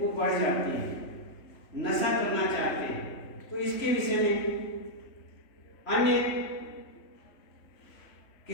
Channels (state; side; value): late; right; 3.4 ms